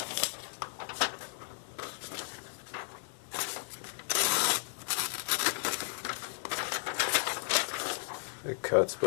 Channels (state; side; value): silent; right; digital silence